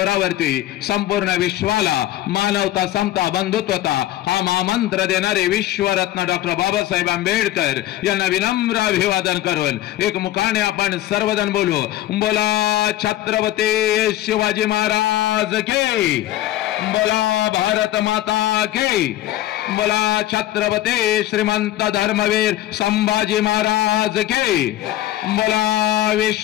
संपूर्ण विश्वाला मानवता, समता, बंधुत्वता हा महामंत्र देणारे विश्वरत्न डॉक्टर बाबासाहेब आंबेडकर यांना विनम्र अभिवादन करून एक मुखाने आपण सर्वजण बोलू, बोला छत्रपती शिवाजी महाराज की, बोला भारत माता की, बोला छत्रपती श्रीमंत धर्मवीर संभाजी महाराज की, बोला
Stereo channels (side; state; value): right; quieter; 14.2 dB